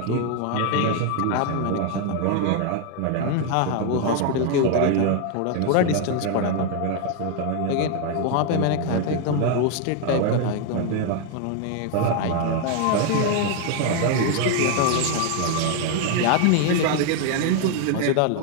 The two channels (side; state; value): both; different; correlation 0.01